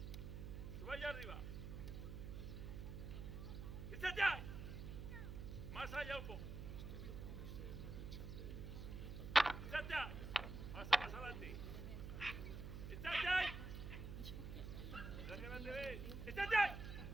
Suba allá arriba. Itxateai. Más allá un poco. Itxateai. Pasa más adelante. Itxateai. Mira que no te ves. Itxateai.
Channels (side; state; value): right; noise; hum, 7 dB below the sound